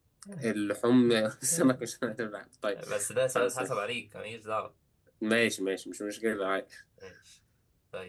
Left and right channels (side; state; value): both; identical; correlation 1.00